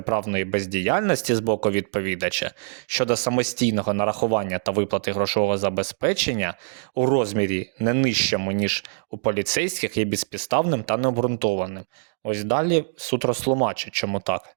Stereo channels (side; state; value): left; silent; digital silence